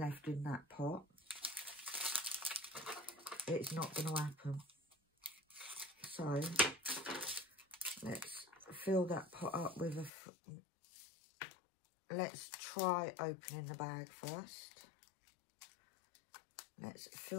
in that pot, it's not going to happen. So let's fill that pot up with a... Let's try opening the bag first. Let's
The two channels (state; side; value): drops out; right; at 10.1 s